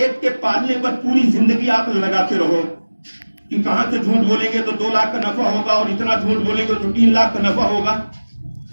کے پالنے پر پوری زندگی عقل لگاتے رہو کہ کہاں سے جھوٹ بولیں گے تو 2 لاکھ کا نفع ہوگا اور اتنا جھوٹ بولیں گے تو 3 لاکھ کا نفع ہوگا.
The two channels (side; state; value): both; inverted; correlation -1.00